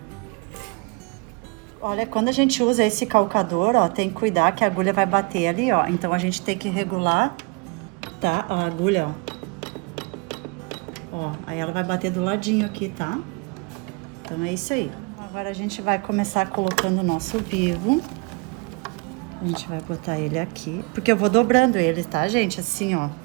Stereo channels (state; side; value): quieter; left; 29.7 dB